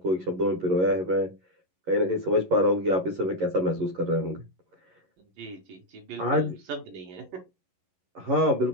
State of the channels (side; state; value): left; late; 11 ms